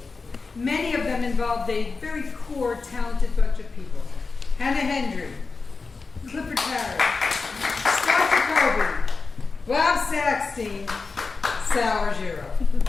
Many of them involved a very core, talented bunch of people. Hannah Hendry, Clifford Parrott, Scott Jacoby, Bob Saxton, Sal Argiro.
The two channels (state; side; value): quieter; right; 4.3 dB